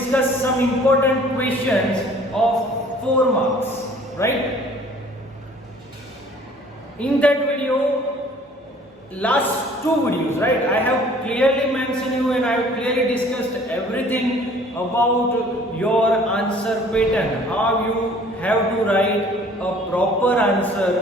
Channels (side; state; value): both; normal; correlation 0.53